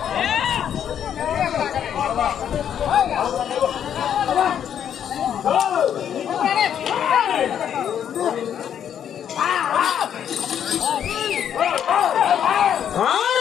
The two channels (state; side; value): quieter; right; 9.2 dB